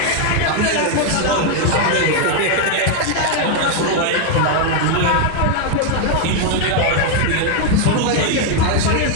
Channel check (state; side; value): different; both; correlation 0.01